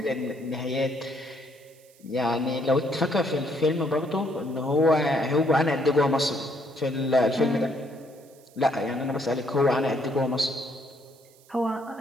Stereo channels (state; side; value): noise; right; hiss, 28 dB below the sound